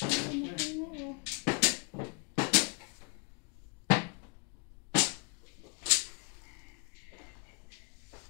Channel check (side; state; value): right; quieter; 33.4 dB